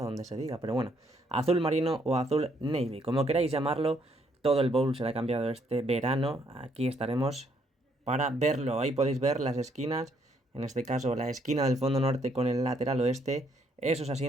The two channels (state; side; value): normal; both; correlation 0.70